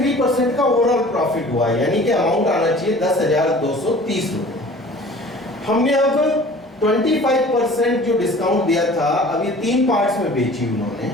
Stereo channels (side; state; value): both; normal; correlation 0.46